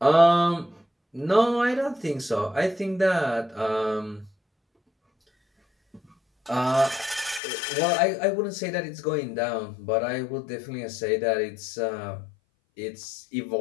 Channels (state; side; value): drops out; right; at 7.4 s